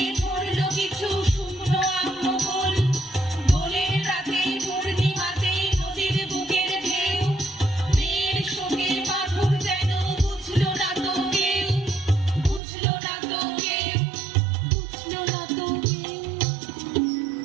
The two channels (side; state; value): left; drops out; at 12.6 s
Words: ঝরলো কিছু শুকনো আম্মকুল। দোলের রাতে পূর্ণিমাতে নদীর বুকের ঢেউ, মেয়ের শোকে বাঁধন যেন বুঝলো না তো কেউ, বুঝলো না তো কেউ, বুঝলো না তো কেউ।